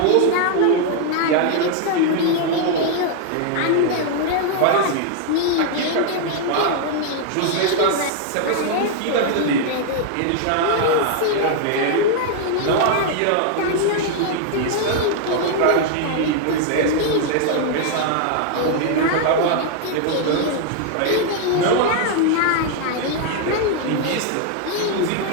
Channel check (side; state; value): both; different; correlation 0.00